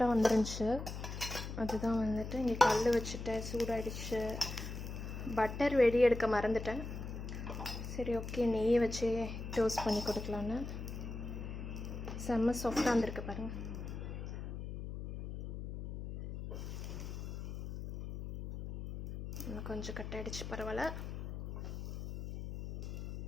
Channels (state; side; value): noise; left; hum, 7 dB below the sound